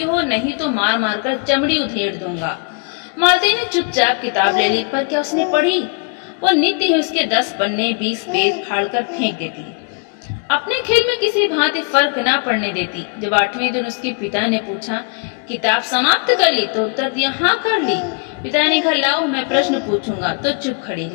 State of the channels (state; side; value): quieter; right; 35.7 dB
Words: हो, नहीं तो मार मार कर चमड़ी उधेड़ दूंगा। मालती ने चुपचाप किताब ले ली, पर क्या उसने पढ़ी? वो नित्य ही उसके 10 पन्ने 20 पेज फाड़ कर फेंक देती, अपने खेल में किसी भांति फर्क ना पड़ने देती। जब 8वें दिन उसके पिता ने पूछा, किताब समाप्त कर ली? तो उत्तर दिया, हाँ कर ली। पिता ने कहा, लाओ मैं प्रश्न पूछूंगा। तो चुप खड़ी